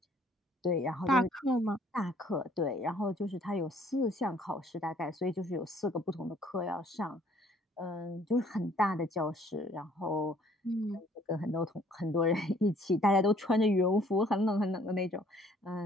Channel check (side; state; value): both; normal; correlation 0.60